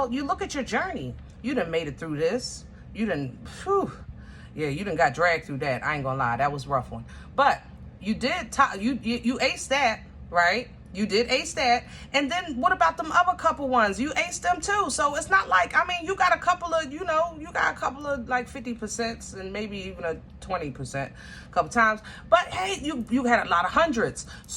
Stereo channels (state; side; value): identical; both; correlation 1.00